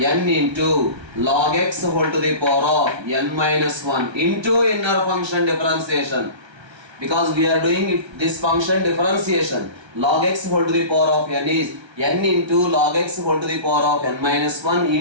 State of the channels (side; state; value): left; late; 1.3 ms